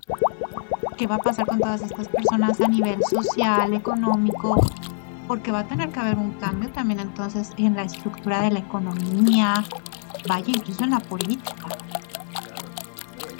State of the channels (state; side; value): silent; right; digital silence